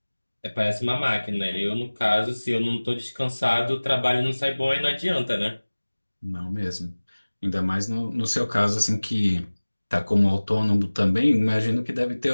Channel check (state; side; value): inverted; both; correlation -1.00